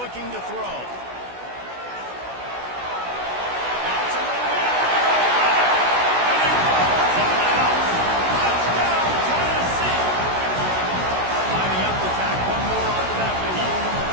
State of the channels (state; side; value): late; left; 16 ms